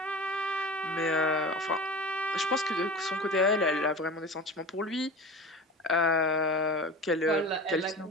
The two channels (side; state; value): both; normal; correlation 0.34